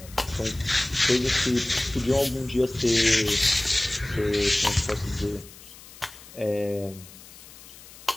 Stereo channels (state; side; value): noise; left; hiss, 19 dB below the sound